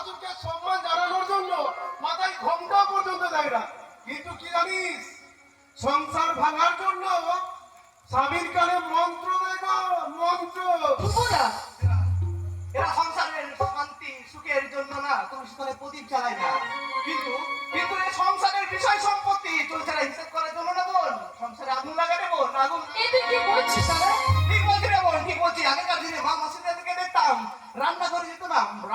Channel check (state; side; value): identical; both; correlation 1.00